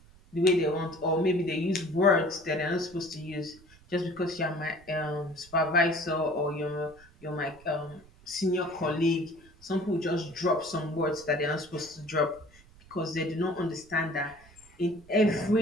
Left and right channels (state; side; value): noise; right; rumble, 25 dB below the sound